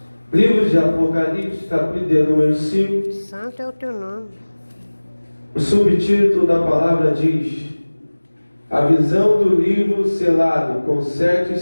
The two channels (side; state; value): both; inverted; correlation -1.00